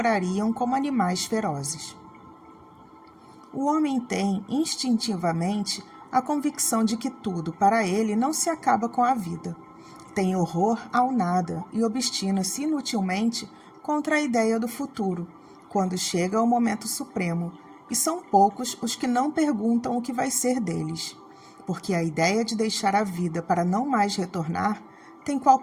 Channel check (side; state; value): both; identical; correlation 1.00